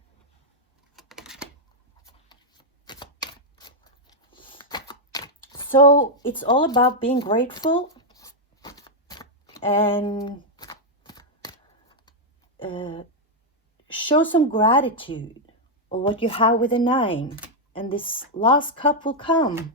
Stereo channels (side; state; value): both; normal; correlation -0.01